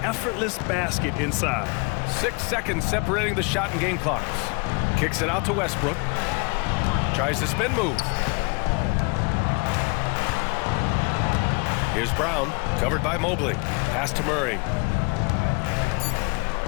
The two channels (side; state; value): right; quieter; 31.5 dB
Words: effortless basket inside. 6 seconds separating the shot and game clocks. Kicks it out to Westbrook. Tries the spin move. Here's Brown, covered by Mobley. Pass to Murray.